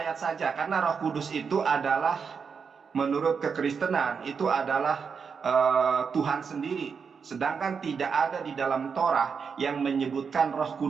saja, karena Roh Kudus itu adalah menurut kekristenan itu adalah Tuhan sendiri. Sedangkan tidak ada di dalam Torah yang menyebutkan Roh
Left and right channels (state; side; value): quieter; left; 6.0 dB